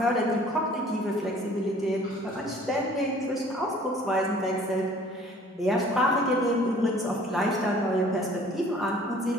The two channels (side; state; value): both; normal; correlation 0.53